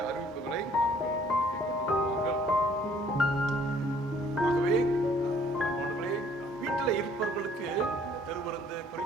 அறிவிப்புகளை ஆகவே வீட்டில் இருப்பவர்களுக்கு திருவிருந்து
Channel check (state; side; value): normal; both; correlation 0.60